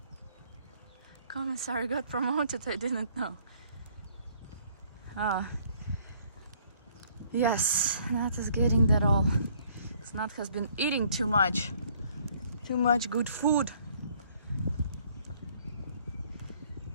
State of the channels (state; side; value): inverted; both; correlation -0.62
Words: Commissar got promoted, I didn't know. Yes, Nat is getting that all. Nat has been eating too much good food.